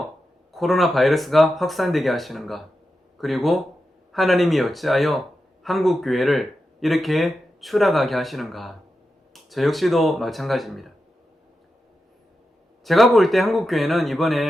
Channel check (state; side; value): normal; both; correlation 0.90